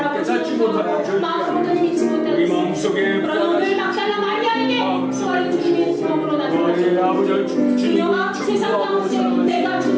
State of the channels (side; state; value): both; identical; correlation 1.00